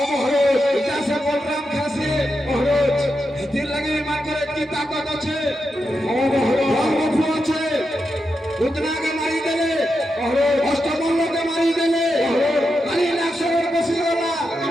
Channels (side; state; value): both; normal; correlation 0.87